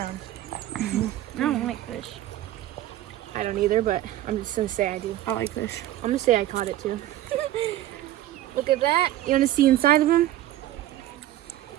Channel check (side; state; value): left; quieter; 14.0 dB